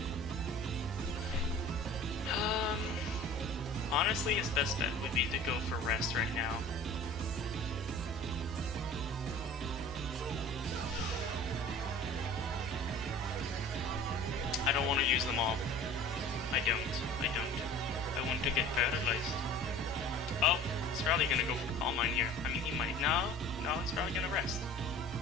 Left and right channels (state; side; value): normal; both; correlation 0.43